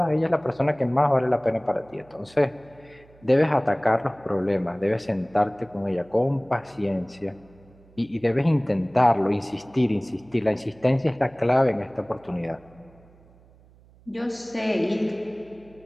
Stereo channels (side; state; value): right; noise; hum, 27 dB below the sound